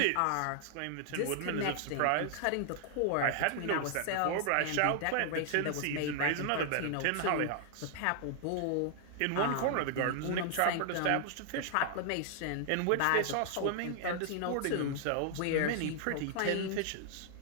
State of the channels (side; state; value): both; different; correlation 0.00